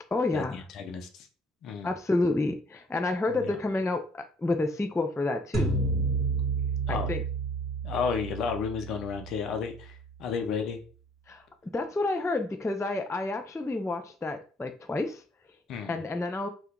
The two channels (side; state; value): both; normal; correlation 0.63